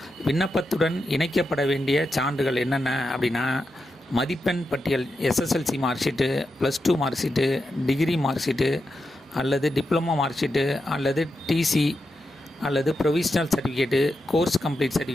விண்ணப்பத்துடன் இணைக்கப்பட வேண்டிய சான்றுகள் என்னென்ன அப்படின்னா, மதிப்பெண் பட்டியல், SSLC mark sheet, +2 mark sheet, degree mark sheet அல்லது டிப்ளமோ மார்க் ஷீட்டு அல்லது TC அல்லது provisional certificate, course complete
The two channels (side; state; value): both; normal; correlation 0.87